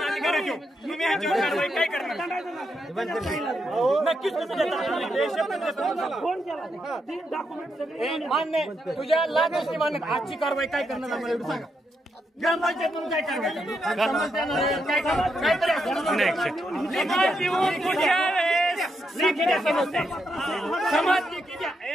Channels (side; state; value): both; normal; correlation 0.81